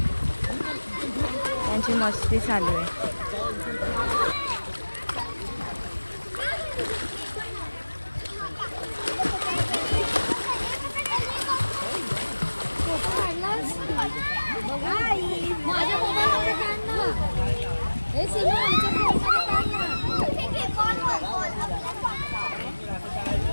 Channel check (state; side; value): inverted; both; correlation -1.00